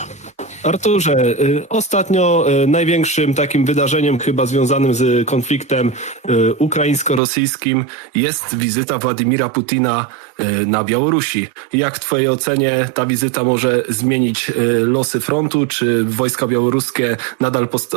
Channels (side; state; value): left; drops out; at 7.2 s